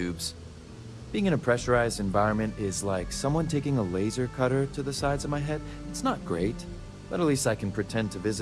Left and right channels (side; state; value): both; identical; correlation 1.00